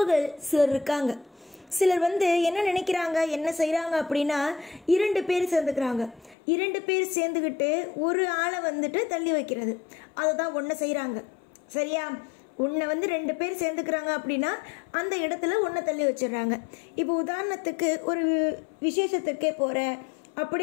சிலர் இருக்காங்க. சிலர் என்ன நினைக்கிறாங்க, என்ன செய்கிறாங்க அப்படின்னா, 2 பேர் சேர்ந்துக்கிறாங்க. 2 பேர் சேர்ந்துக்கிட்டு ஒரு ஆளை தள்ளி வைக்கிறது. அதை தான் ஒன்று செய்கிறாங்க. சரியா? உன்னை 2 பேர் சேர்ந்துக்கிறாங்க அப்படின்னா அந்த இடத்துல உன்னை தள்ளி வச்சிடுறாங்க. இப்போ உதாரணத்துக்கு ஒரு விசேஷத்துக்கே போகிற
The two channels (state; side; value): drops out; right; at 6.4 s